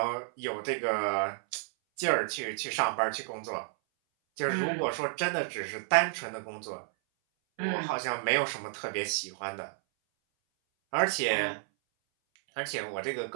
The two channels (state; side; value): silent; left; 57 dB below the other